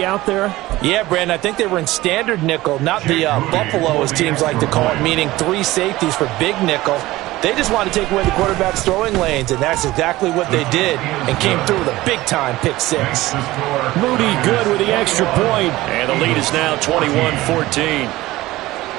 out there? Yeah, Brandon, I think they were in standard nickel, not the Buffalo, as teams like to call it, meaning 3 safeties for big nickel. They just wanted to take away the quarterback's throwing lanes, and that's exactly what they did and came through with a big-time pick 6. Moody good with the extra point. And the lead is now 21-14.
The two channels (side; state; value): left; quieter; 17.9 dB